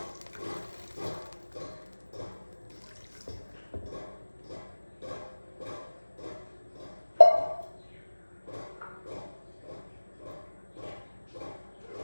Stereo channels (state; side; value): inverted; both; correlation -1.00